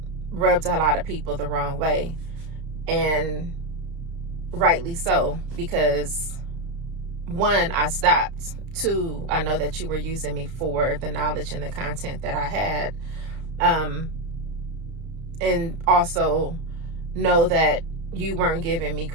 rubbed a lot of people the wrong way. And rightly so, because one, I stopped. Two, I know that you were using me for the knowledge and the content that I had. And also know that you weren't giving me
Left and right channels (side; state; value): left; late; 32 ms